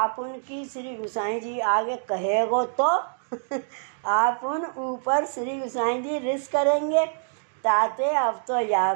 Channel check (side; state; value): left; silent; digital silence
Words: उनकी श्री गुसाई जी आगे कहेगो तो आप उन ऊपर श्री गुसाई जी रिस करेंगे। ताते अब तो या